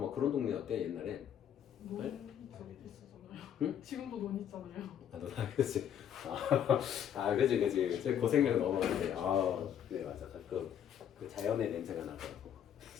막 그런 동네였대 옛날에. 논 저기 있었잖아요. 응? 지금도 논 있잖아요. 그렇지. 그치. 고생력 넘어가는데. 네 맞아. 가끔 그 자연의 냄새가 나더라고.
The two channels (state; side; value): quieter; right; 9.3 dB